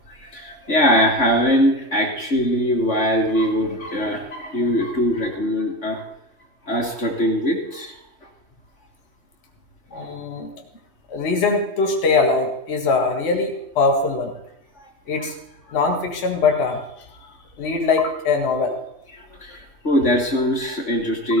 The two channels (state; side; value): late; right; 3.1 ms